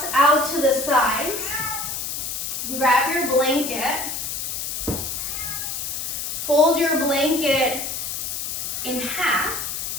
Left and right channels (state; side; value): noise; left; hiss, 4 dB below the sound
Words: out to the sides. Grab your blanket. Fold your blanket in half.